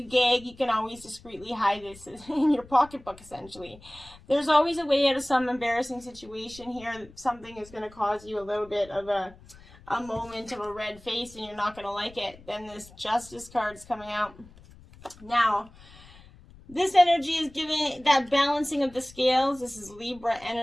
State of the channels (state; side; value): noise; left; rumble, 22 dB below the sound